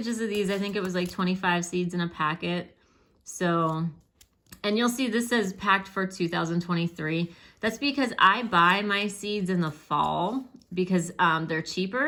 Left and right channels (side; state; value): both; identical; correlation 1.00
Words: of these. I think it was like 25 seeds in a packet. So And you'll see this says packed for 2023. That's because I buy my seeds in the fall because they're